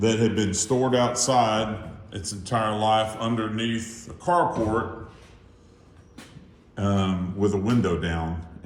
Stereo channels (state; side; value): identical; both; correlation 1.00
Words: had been stored outside its entire life underneath a carport with a window down.